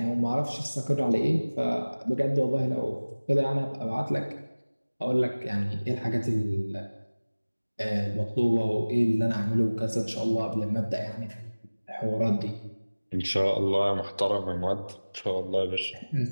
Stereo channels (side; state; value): both; inverted; correlation -1.00